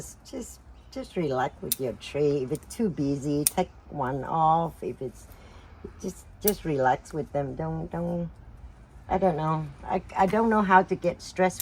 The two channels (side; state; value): both; identical; correlation 1.00